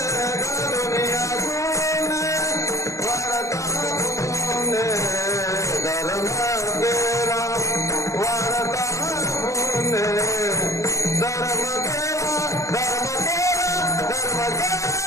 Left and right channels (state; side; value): late; right; 0.15 ms